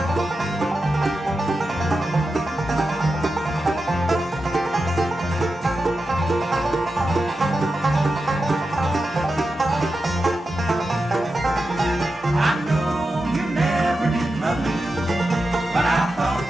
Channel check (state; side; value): normal; both; correlation 0.90